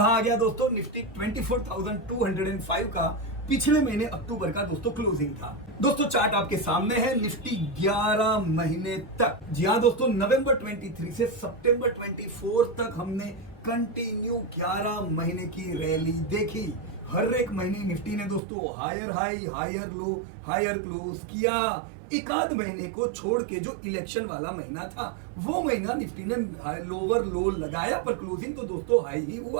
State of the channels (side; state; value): left; drops out; at 18.4 s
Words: आ गया दोस्तों, निफ्टी 24,205 का पिछले महीने अक्टूबर का दोस्तों क्लोजिंग था। दोस्तों चार्ट आपके सामने है, निफ्टी 11 महीने तक, जी हाँ दोस्तों, नवंबर 23 से सितंबर 24 तक हमने कंटिन्यू 11 महीने की रैली देखी। हर एक महीने निफ्टी ने दोस्तों higher high higher low higher close किया। एक आध महीने को छोड़ के जो इलेक्शन वाला महीना था वो महीना निफ्टी ने लोअर लो लगाया, पर क्लोजिंग तो दोस्तों हाई ही